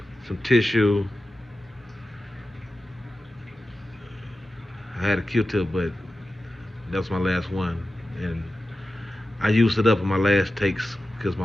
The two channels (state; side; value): normal; both; correlation 0.93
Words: some tissue. I had a Q-tip, but that was my last one, and I used it up in my last takes because